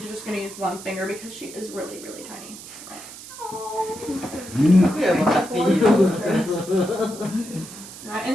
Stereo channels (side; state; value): right; noise; hiss, 14 dB below the sound